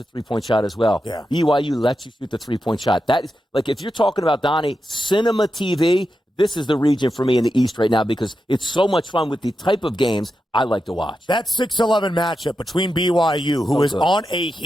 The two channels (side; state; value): both; normal; correlation 0.88